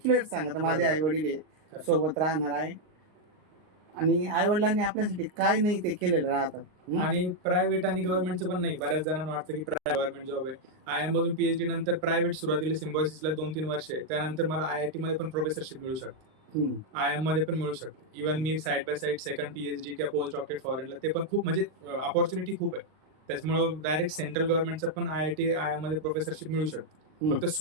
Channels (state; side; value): late; left; 39 ms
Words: सांगा माझे आई वडील सोबत राहणार आहे, आणि आई वडिलांनी आपल्यासाठी काय नाही ते केलेलं राहतं. आणि प्रायव्हेट आणि गव्हर्नमेंटचं पण नाही. बऱ्याच जणांना वाटतं की गव्हर्नमेंट जॉब आहे. IIM मधून PhD नंतर प्रायव्हेट सुरुवातीला सिम्बॉयसिसला 2-3 वर्ष आहे, त्यानंतर मला IIT मध्ये पण प्रोफेसरशिप मिळू शकते, IIM मध्ये पण मिळू शकते. Even me side by side second PhD किंवा पोस्ट डॉक्टरेट फॉरेनला, ते पण खूप म्हणजे अपॉर्च्युनिटी खूप आहे. त्याच्यामुळे डायरेक्ट सेंट्रल गव्हर्नमेंटचं पण IIM मध्ये प्रोफेसरशिप मिळू शकते. फक्त